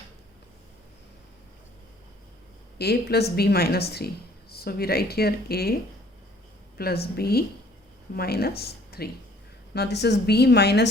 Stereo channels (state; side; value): normal; both; correlation 0.57